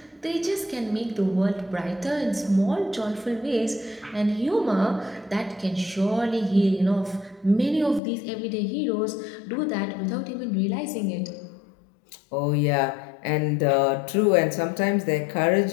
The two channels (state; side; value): drops out; right; at 8.0 s